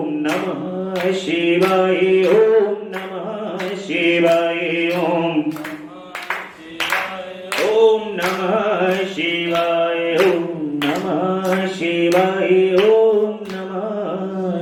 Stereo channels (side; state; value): both; identical; correlation 1.00